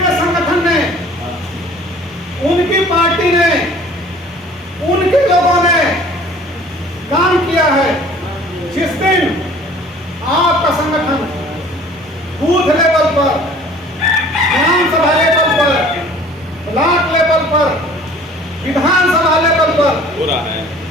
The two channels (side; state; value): both; normal; correlation 0.50